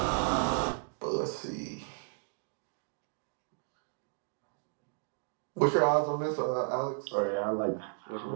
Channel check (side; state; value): left; silent; digital silence